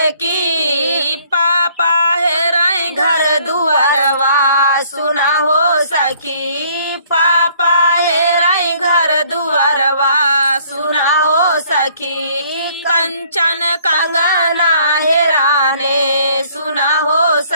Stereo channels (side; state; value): both; inverted; correlation -0.61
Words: की, पापा हेराई घर दुआरवा सुना हो सखी, पापा हेराई घर दुआरवा सुना हो सखी, कंचन कंगना हेराने सुना हो